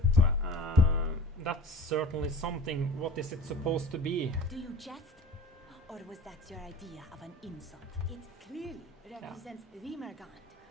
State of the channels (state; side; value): normal; both; correlation 0.41